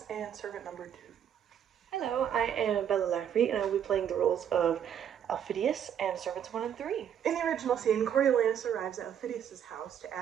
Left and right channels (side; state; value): left; quieter; 9.1 dB